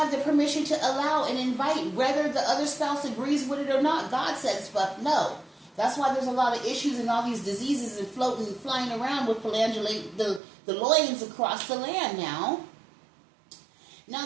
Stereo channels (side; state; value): left; drops out; at 10.4 s